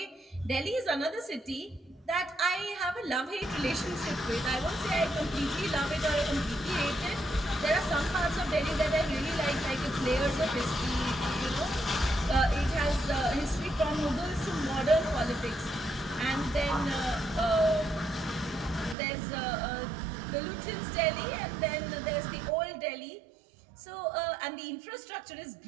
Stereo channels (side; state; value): left; drops out; at 18.9 s